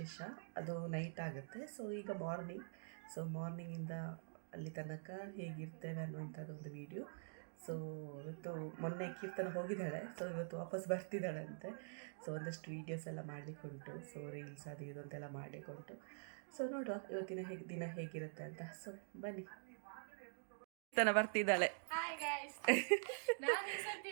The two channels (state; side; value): silent; left; digital silence